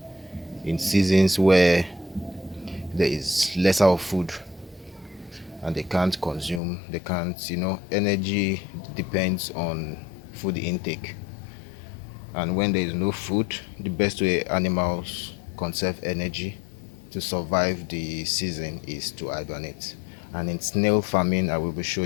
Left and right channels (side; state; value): right; drops out; at 6.6 s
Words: in seasons where there is lesser of food and they can't, energy depends on food intake. And when there is no food, the best way animals conserve energy to survive the season is to hibernate. And in snail farming, I will be